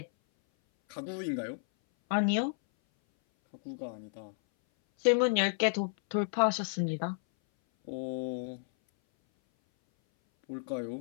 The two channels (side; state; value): right; silent; 57 dB below the other